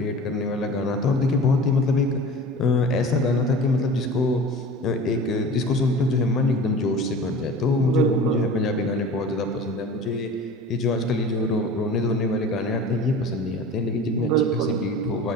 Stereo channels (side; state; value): both; normal; correlation 0.38